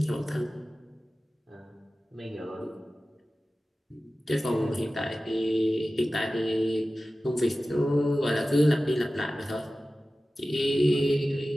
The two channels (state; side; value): normal; both; correlation 0.95